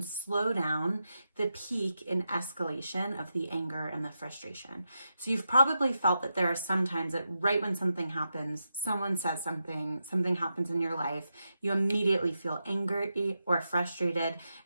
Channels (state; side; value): inverted; both; correlation -0.86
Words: slow down the peak in escalation of the anger and the frustration. So you've probably felt that there are some times that right when something happens, someone says something happens in your life, you immediately feel angry or frustrated,